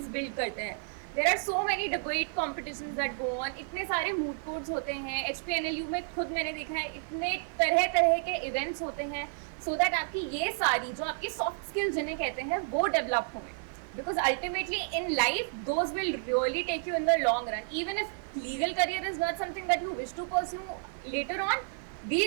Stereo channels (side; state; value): left; silent; 57 dB below the other